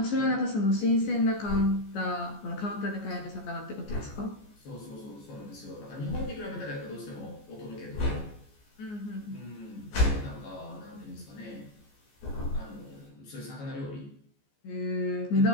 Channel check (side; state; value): right; late; 14 ms